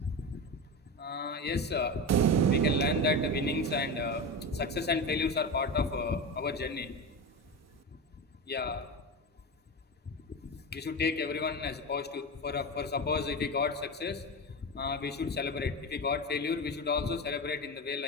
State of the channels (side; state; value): both; normal; correlation 0.21